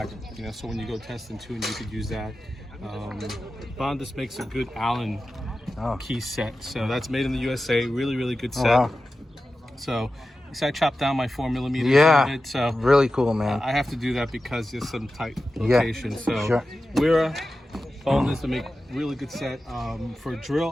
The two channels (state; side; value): normal; both; correlation 0.93